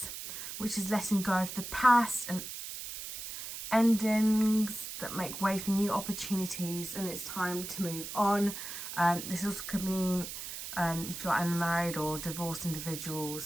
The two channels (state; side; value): noise; right; hiss, 8 dB below the sound